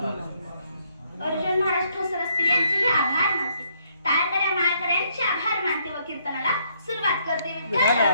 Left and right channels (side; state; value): both; inverted; correlation -0.71